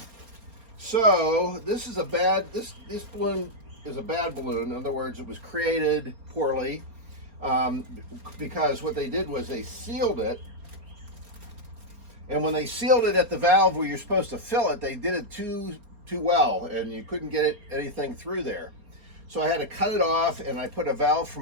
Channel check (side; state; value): left; late; 4.3 ms